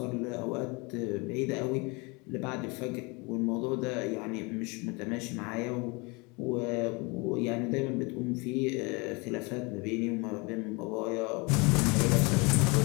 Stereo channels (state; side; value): quieter; right; 28.3 dB